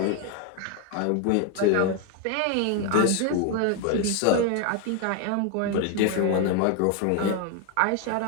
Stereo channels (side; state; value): both; different; correlation 0.01